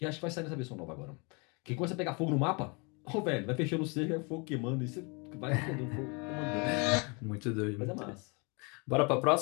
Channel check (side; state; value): right; quieter; 31.8 dB